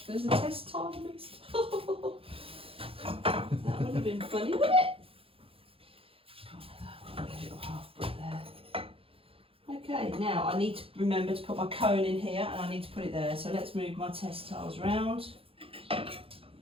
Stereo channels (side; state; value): left; late; 0.27 ms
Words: there's a test tile mixed. That would have been funny, wouldn't it? A little half brick there. Okay, now I need to remember to put my cone in here, and I need to put it there. So let's move my test tiles round. The